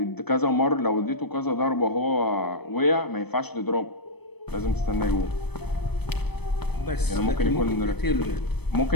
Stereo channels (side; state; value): right; late; 0.97 ms